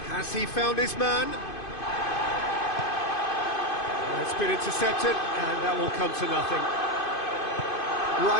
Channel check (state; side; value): late; right; 2.5 ms